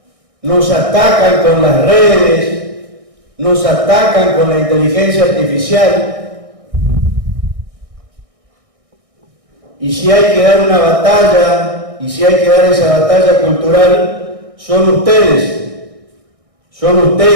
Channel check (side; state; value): left; late; 1.6 ms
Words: Nos atacan con las redes, nos atacan con la inteligencia artificial. Y si hay que dar una batalla, y si hay que dar esa batalla cultural, son ustedes